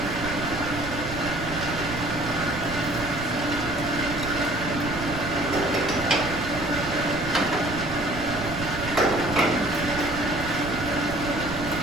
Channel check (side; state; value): right; noise; rumble, 10 dB below the sound